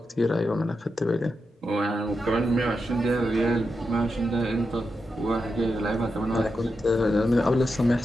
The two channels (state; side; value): normal; both; correlation 0.87